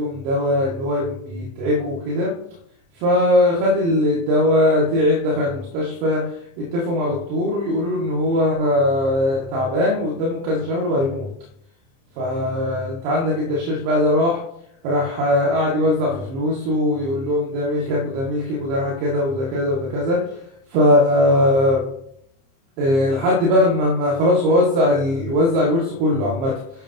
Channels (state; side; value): late; left; 30 ms